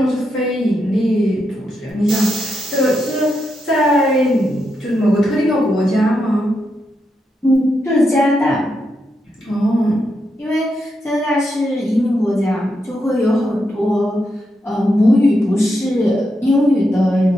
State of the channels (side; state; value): both; normal; correlation 0.83